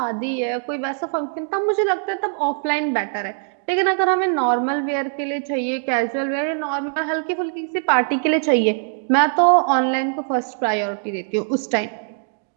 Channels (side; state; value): left; silent; digital silence